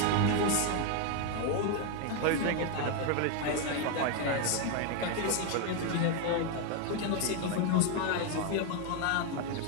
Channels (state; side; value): different; both; correlation 0.01